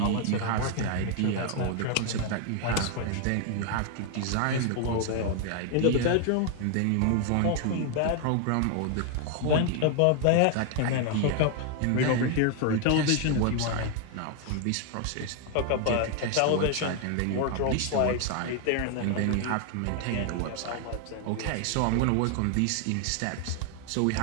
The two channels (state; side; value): different; both; correlation 0.00